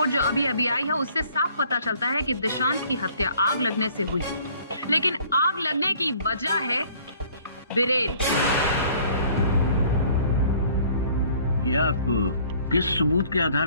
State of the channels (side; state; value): both; inverted; correlation -0.56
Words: जो अभी अभी आई है उससे साफ पता चलता है कि दिशांत की हत्या आग लगने से हुई, लेकिन आग लगने की वजह है बिरेन। ये आप किस सबूत के